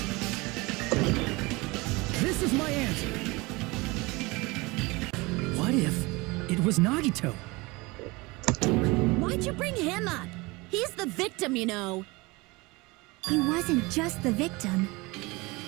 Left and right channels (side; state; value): left; quieter; 23.9 dB